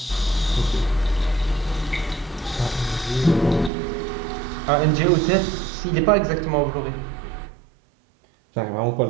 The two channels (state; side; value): drops out; left; at 3.7 s